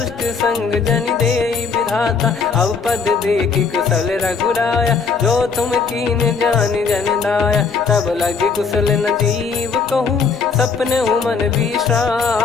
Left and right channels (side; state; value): right; quieter; 5.2 dB